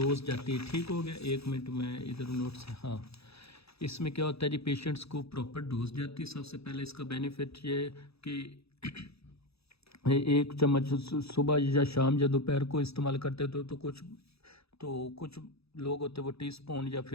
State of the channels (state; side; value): late; right; 0.78 ms